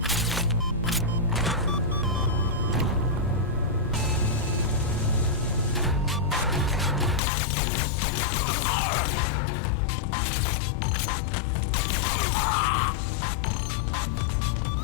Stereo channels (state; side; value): drops out; right; at 7.2 s